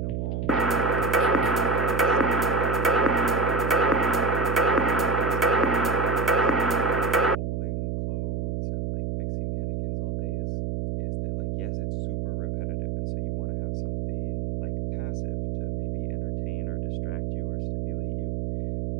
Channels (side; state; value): right; noise; hum, 2 dB below the sound